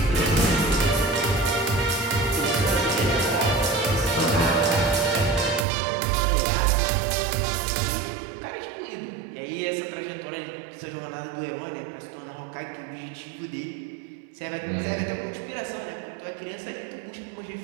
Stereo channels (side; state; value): left; drops out; at 5.7 s